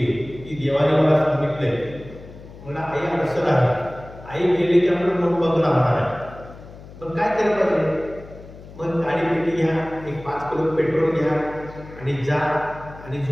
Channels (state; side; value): noise; left; hum, 17 dB below the sound